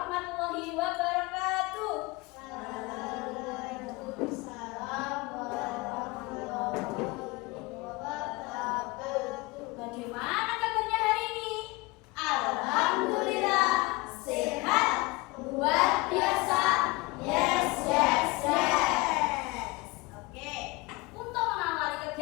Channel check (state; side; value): quieter; right; 23.7 dB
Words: wabarakatuh. Waalaikumsalam warahmatullahi wabarakatuh. Bagaimana kabarnya hari ini? Alhamdulillah, sehat, luar biasa. Yes, yes, yes. Oke, untuk mengawali